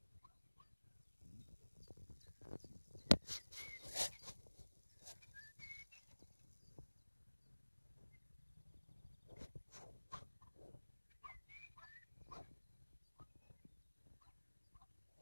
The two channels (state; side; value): inverted; both; correlation -1.00